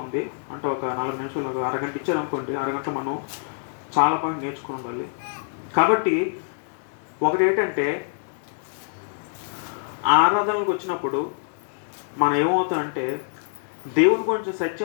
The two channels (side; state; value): right; silent; digital silence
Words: ఉంది. అంటే ఒక 4 నిమిషాలు, ఒక అరగంట ఇచ్చారనుకోండి, అరగంట మనం చాలా పాయింట్ నేర్చుకుని ఉండాలి. కాబట్టి ఒకటి ఏంటంటే, ఆరాధనలకు వచ్చినప్పుడు మనం ఏమవుతామంటే దేవుని గురించి